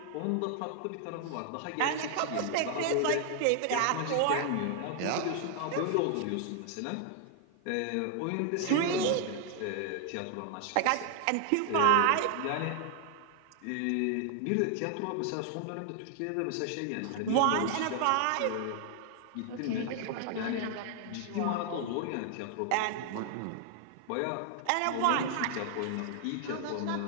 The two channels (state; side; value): different; both; correlation 0.00